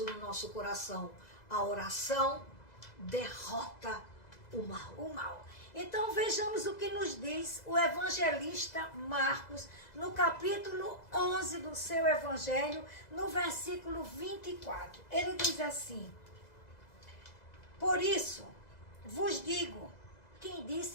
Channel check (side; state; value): right; late; 2.0 ms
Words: no nosso coração. A oração derrota o mal. Então vejamos o que nos diz o evangelista Marcos, no capítulo 11 do seu evangelho, no versículo 24. Ele diz assim: por isso vos digo, quem